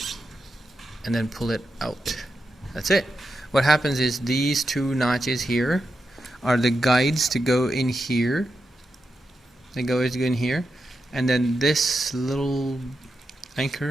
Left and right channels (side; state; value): both; normal; correlation 0.88